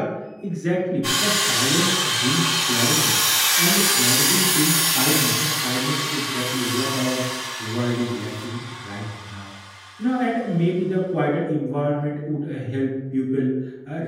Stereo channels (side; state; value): both; identical; correlation 1.00